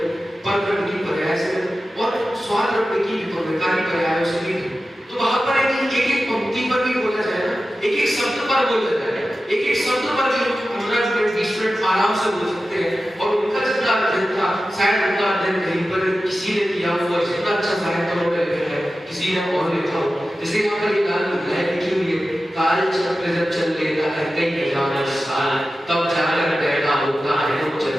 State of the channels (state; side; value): normal; both; correlation 0.94